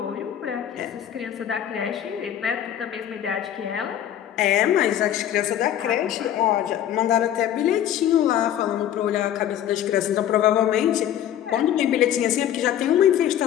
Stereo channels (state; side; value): quieter; right; 10.9 dB